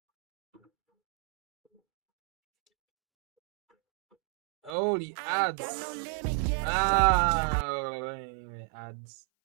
Oh, the ads. Ads.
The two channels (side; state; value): left; drops out; at 4.8 s